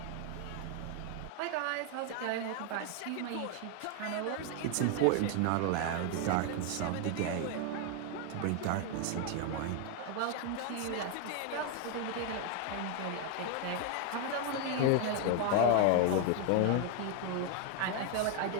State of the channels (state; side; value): different; both; correlation 0.01